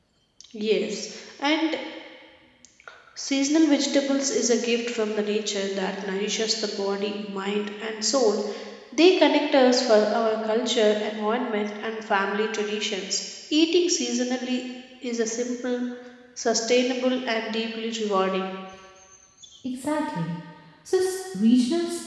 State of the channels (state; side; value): identical; both; correlation 1.00